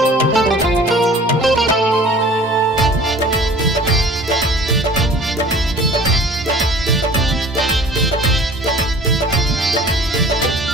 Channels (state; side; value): normal; both; correlation 0.46